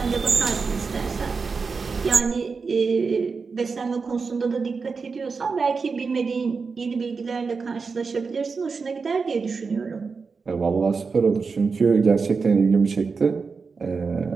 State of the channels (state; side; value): quieter; left; 4.9 dB